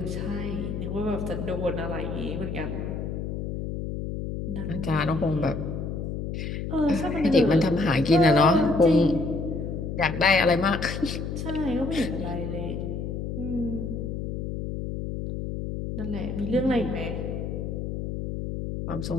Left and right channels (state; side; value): noise; left; hum, 4 dB below the sound